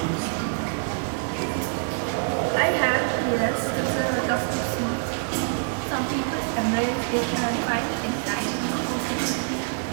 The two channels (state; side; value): silent; left; 60 dB below the other